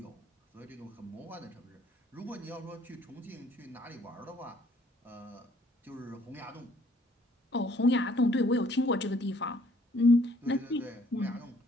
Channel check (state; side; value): normal; both; correlation 0.62